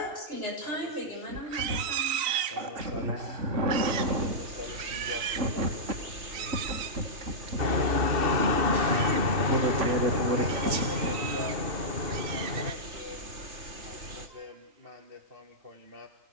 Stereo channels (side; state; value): left; late; 3.3 ms